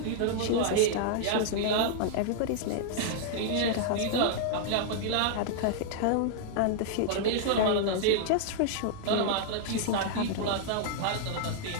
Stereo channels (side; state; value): both; different; correlation -0.01